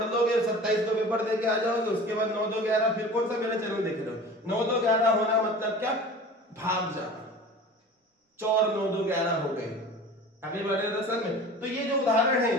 लोगे 27 को पेपर देके आ जाओगे, उसके बाद 9 2 11, फिर कौन सा मेरा चैनल देख रहे हो? 9 2 11 होना मतलब क्या? भाग जाना, चौर 9 2 11 हो गए। आगे बढ़े दरअसल में, तो ये जो उदाहरण है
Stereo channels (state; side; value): normal; both; correlation 0.39